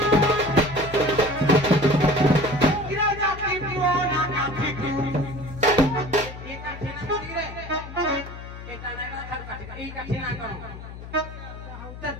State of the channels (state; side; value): noise; left; hum, 12 dB below the sound